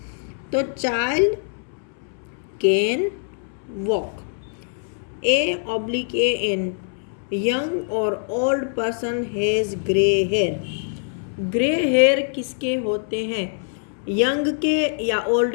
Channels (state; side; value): silent; right; 63 dB below the other